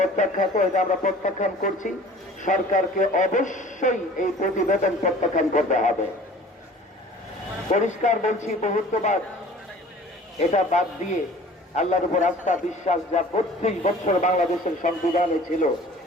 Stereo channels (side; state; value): both; normal; correlation 0.47